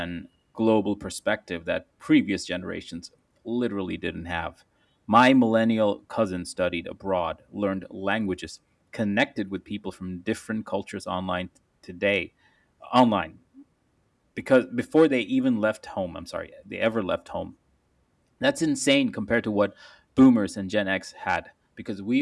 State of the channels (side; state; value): both; identical; correlation 1.00